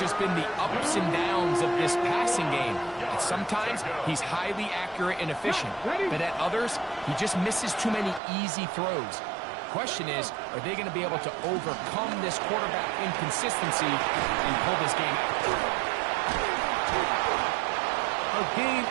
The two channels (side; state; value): left; drops out; at 8.2 s